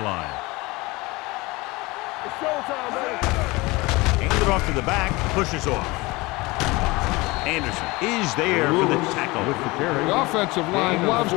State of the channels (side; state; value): right; quieter; 23.0 dB